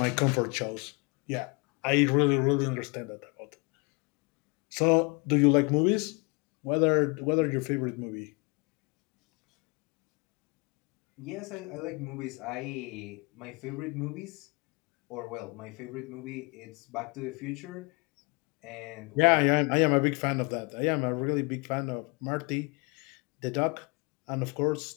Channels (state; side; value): quieter; right; 30.2 dB